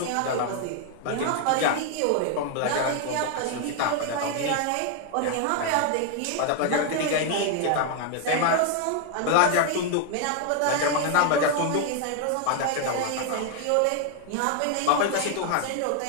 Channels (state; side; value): different; both; correlation 0.00